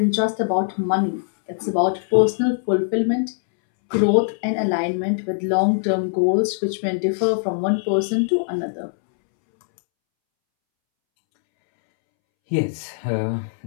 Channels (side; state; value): right; silent; 65 dB below the other